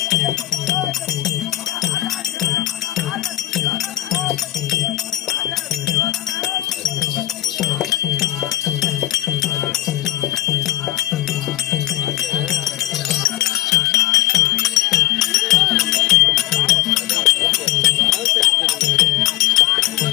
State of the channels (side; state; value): right; quieter; 15.2 dB